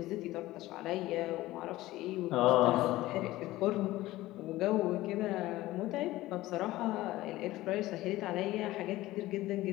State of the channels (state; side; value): quieter; right; 17.1 dB